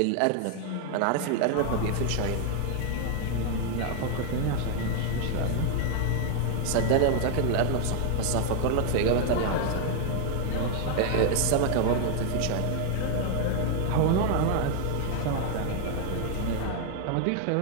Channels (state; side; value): different; both; correlation 0.00